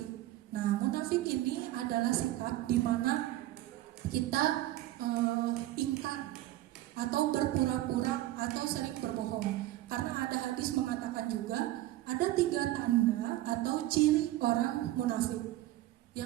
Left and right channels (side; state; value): left; quieter; 15.5 dB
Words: Nah, munafik ini adalah sikap di mana kita ingkar atau berpura-pura atau sering berbohong. Karena ada hadis mengatakan juga ada 3 tanda atau ciri orang munafik.